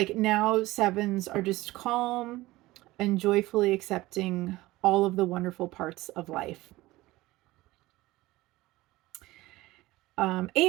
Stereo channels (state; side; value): quieter; left; 18.6 dB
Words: now sevens are just calm and joyfully accepting all of the wonderful parts of life.